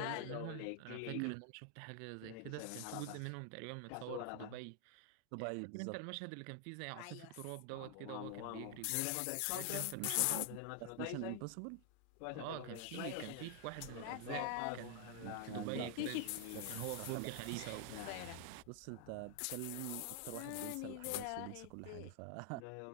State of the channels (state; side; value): different; both; correlation 0.00